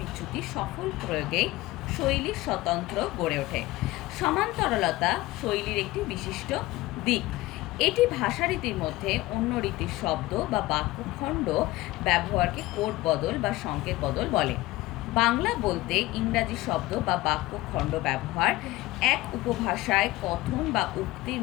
বিচ্যুতি সফল প্রয়োগেই শৈলীর স্বতন্ত্র গড়ে ওঠে। সমান্তরলতা শৈলীর একটি বিশিষ্ট দিক। এটি ভাষারীতির মধ্যে অন্য রীতির শব্দ বা বাক্যখণ্ড ব্যবহারকে কোড বদল বা সংকেত বদল বলে। বাংলা বলতে ইংরাজি শব্দ বা বাক্যখণ্ড ব্যবহার, এক উপভাষায় কথন বা উক্তির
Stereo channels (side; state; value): right; quieter; 18.8 dB